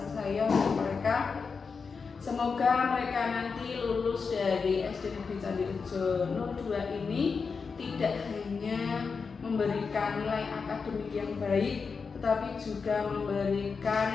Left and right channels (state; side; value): quieter; right; 5.2 dB